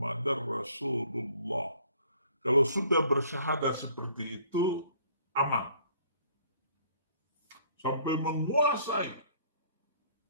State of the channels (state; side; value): inverted; both; correlation -0.58